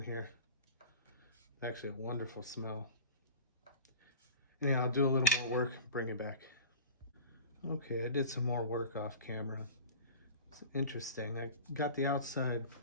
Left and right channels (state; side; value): inverted; both; correlation -0.36